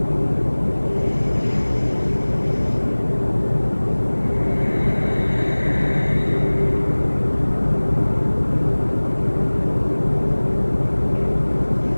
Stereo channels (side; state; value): both; inverted; correlation -1.00